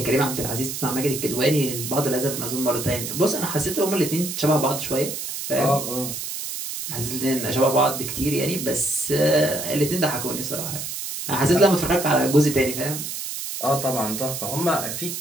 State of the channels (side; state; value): right; noise; hiss, 6 dB below the sound